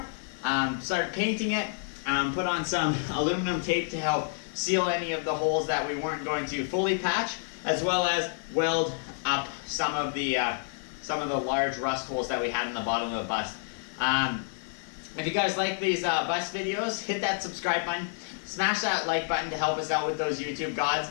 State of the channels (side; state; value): right; silent; digital silence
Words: start painting it, put on some aluminum tape to help seal any of the holes that we weren't going to fully patch, as well as weld up some of the large rust holes that we had in the bottom of the bus. If you guys like these bus videos, hit that subscribe button, smash that like button to help us out with those YouTube gods,